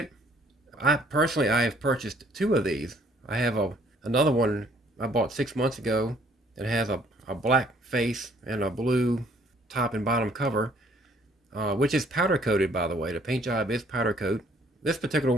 I have purchased two of these. I have another one I bought 6 months ago that has a black face and a blue top and bottom cover, which is powder coated, by the way. The paint job is powder coat. This particular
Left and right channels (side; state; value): both; normal; correlation 0.62